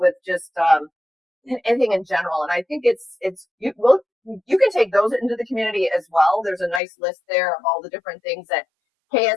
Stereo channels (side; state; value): right; drops out; at 6.8 s